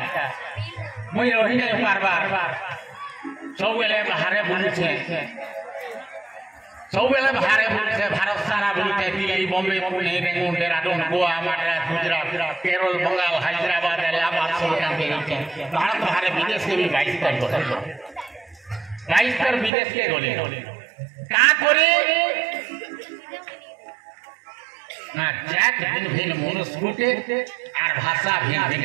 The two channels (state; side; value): drops out; left; at 19.7 s